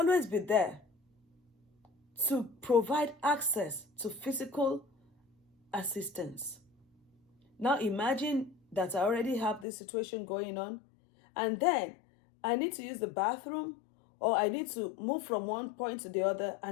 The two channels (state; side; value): drops out; right; at 9.7 s